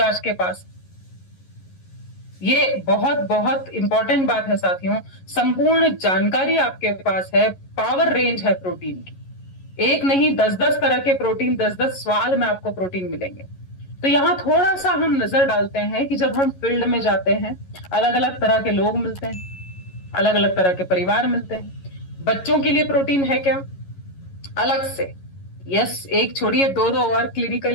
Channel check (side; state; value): right; late; 11 ms